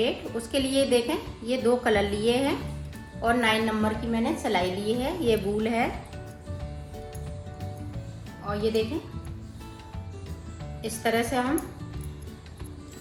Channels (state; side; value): identical; both; correlation 1.00